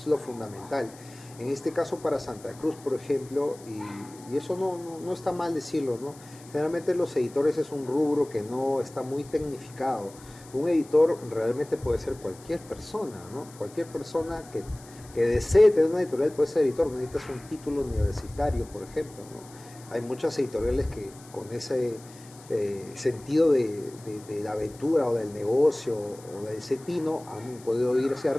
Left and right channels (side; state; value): left; noise; hiss, 22 dB below the sound